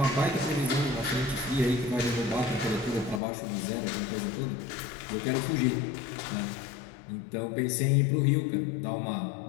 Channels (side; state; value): right; drops out; at 3.2 s